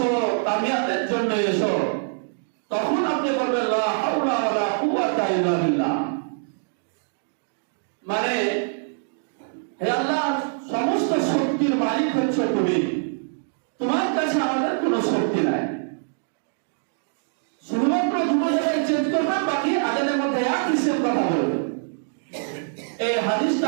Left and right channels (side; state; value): left; silent; digital silence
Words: কামিয়াতের জন্য এসো, তখন আপনি বলবেন লা হাওলা ওয়ালা কুওয়াতা ইল্লা বিল্লাহ। মানে হে আল্লাহ, সমস্ত শক্তির মালিক হচ্ছে তুমি, তোমার কাছে আমাদের কোনো শক্তি নাই। শুধুমাত্র দুটো জায়গায় চেঞ্জ করবেন, বাকি আজানের মধ্যে একই সেম কথা বলবেন। এই